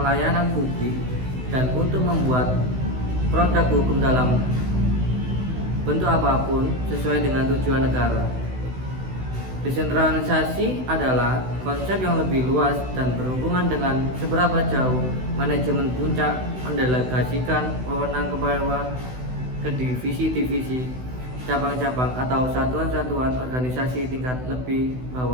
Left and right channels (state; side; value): late; left; 16 ms